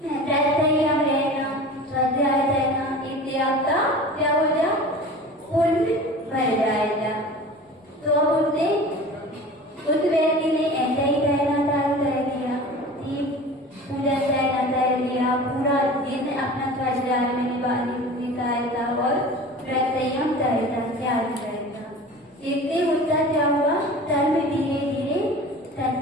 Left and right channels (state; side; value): normal; both; correlation 0.38